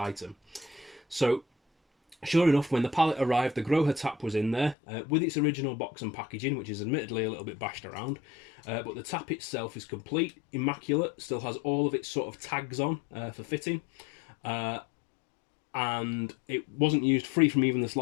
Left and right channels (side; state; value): right; drops out; at 4.8 s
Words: So sure enough, when the pallet arrived, the Grohe tap was in there with its original box and packaging, which is admittedly a little bit bashed around, but the tap itself is complete, immaculate, still has all of its sort of tags on for fitting, and it wasn't used, free from even the